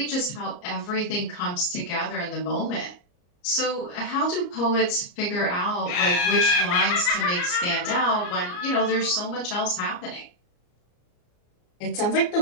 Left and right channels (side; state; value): right; late; 34 ms